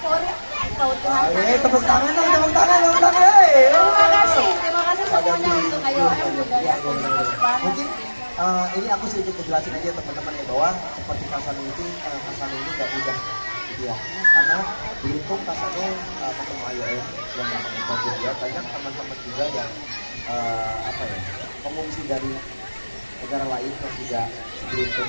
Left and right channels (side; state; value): both; inverted; correlation -1.00